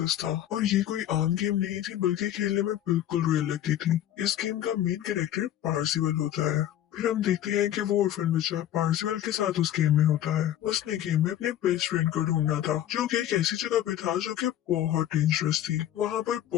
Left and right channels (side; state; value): right; quieter; 11.8 dB